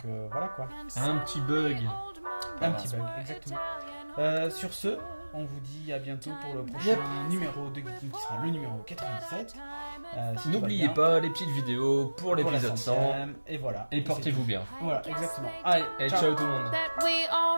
voilà quoi. Un petit bug. Un petit bug, exactement. Sur ce, on vous dit à bientôt pour le prochain numéro de Geeking qui sera le numéro 97. N'oubliez pas les petites vidéos pour l'épisode 100. Et voilà. Et portez-vous bien. Voilà, exactement. Allez, et ciao tout le monde.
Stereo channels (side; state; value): both; inverted; correlation -1.00